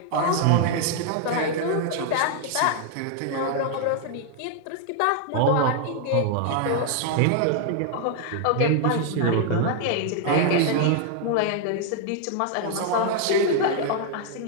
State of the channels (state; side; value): different; both; correlation 0.00